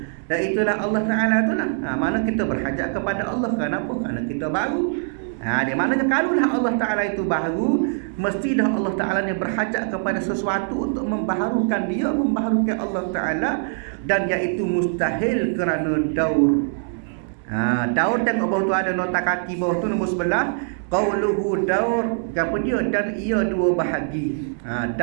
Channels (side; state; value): left; silent; digital silence